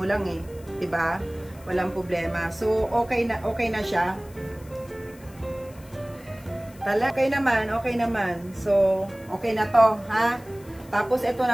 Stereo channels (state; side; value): noise; left; hiss, 25 dB below the sound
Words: lang eh. Diba? Walang problema. So, okay na siya. Okay naman. So, okay na to, ha? Tapos, ito